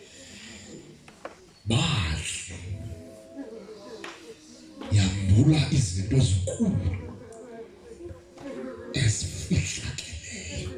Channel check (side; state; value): both; identical; correlation 1.00